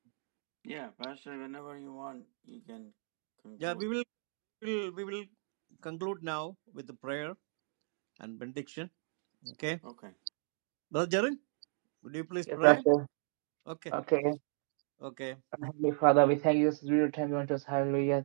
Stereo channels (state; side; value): silent; left; digital silence